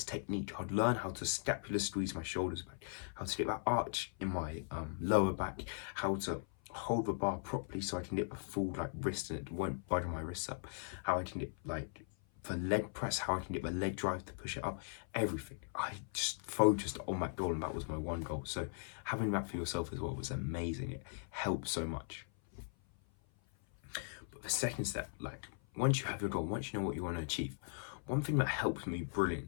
technique. I'd learn how to scapular squeeze my shoulders back, how to get that arch in my lower back, how to hold the bar properly so I can get the full like wrist and it won't budge my wrists up, how I can get like the leg press, how I can get the leg drive to push it up, everything. I just focused on that goal and that was my one goal. So having that for yourself as well was amazing. It helped so much. But the second step, like once you have your goal, once you know what you want to achieve, one thing that helped me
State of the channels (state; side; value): silent; right; 52 dB below the other